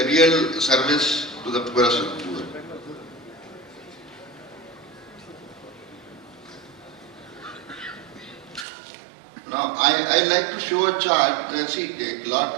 real service to the poorest of the poor. Now, I like to show a chart.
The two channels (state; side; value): drops out; left; at 8.7 s